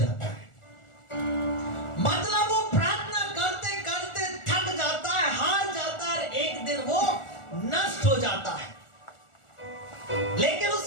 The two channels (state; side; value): late; right; 1.4 ms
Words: है। मतलब वो प्रार्थना करते करते थक जाता है, हार जाता है, एक दिन वो नष्ट हो जाता है, लेकिन